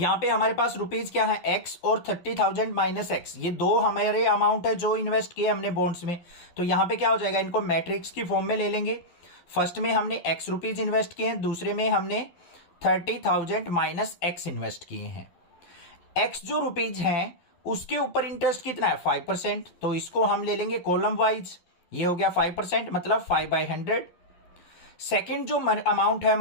पे हमारे पास रुपीज क्या है x और 30,000 माइनस x, ये दो हमारे अमाउंट है जो इन्वेस्ट किए हमने बॉन्ड्स में। तो यहां पे क्या हो जाएगा, इनको मैट्रिक्स की फॉर्म में ले लेंगे। फर्स्ट में हमने x रुपीज इन्वेस्ट किए हैं, दूसरे में हमने 30,000 माइनस x इन्वेस्ट किए हैं। x जो रुपीज हैं उसके ऊपर इंटरेस्ट कितना है 5%, तो इसको हम ले लेंगे कॉलम वाइज। ये हो गया 5%, मतलब 5/100। सेकंड जो अमाउंट है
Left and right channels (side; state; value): right; late; 11 ms